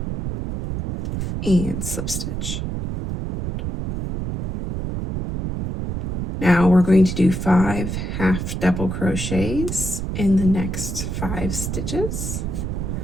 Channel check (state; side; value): noise; right; rumble, 4 dB below the sound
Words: and slip stitch. Now we're going to do 5 half double crochets in the next 5 stitches.